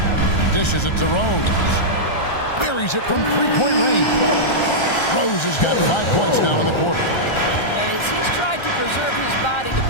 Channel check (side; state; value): right; late; 1.3 ms